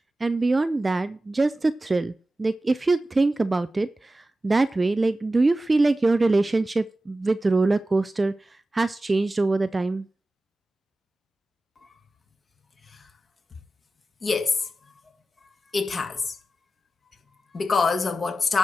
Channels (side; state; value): both; normal; correlation 0.94